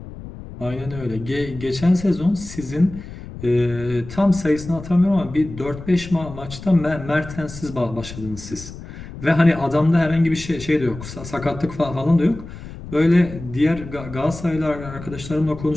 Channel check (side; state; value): left; noise; rumble, 13 dB below the sound